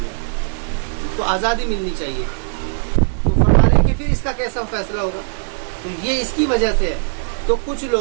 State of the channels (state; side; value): silent; left; digital silence